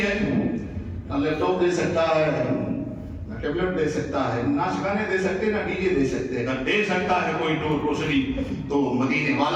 ہے، نہ لیپ ٹاپ دے سکتا ہے، نہ ٹیبلٹ دے سکتا ہے، نہ گانے دے سکتے، نہ ڈی جے دے سکتے۔ اگر دے سکتا ہے کوئی نور روشنی تو مدینے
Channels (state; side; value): identical; both; correlation 1.00